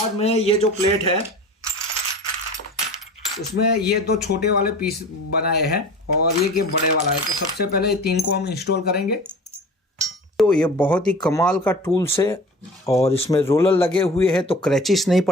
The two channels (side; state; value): both; normal; correlation 0.39